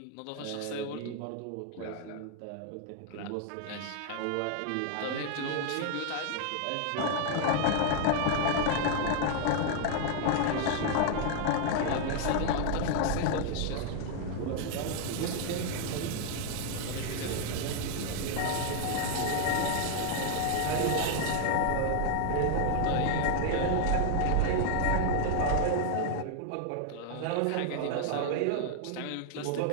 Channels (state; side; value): different; both; correlation 0.00